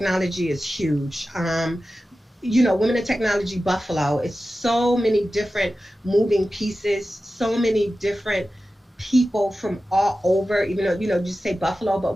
is huge. Women in Technology Buffalo, it's so many different moving pieces, so many different people from all over, even though, just say Buffalo, but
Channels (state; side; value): normal; both; correlation 0.94